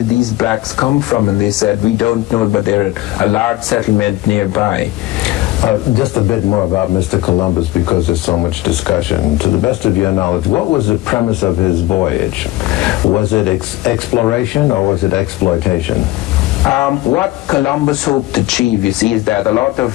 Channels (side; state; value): right; quieter; 17.6 dB